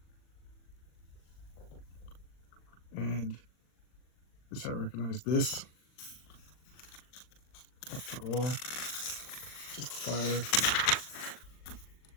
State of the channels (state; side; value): late; right; 40 ms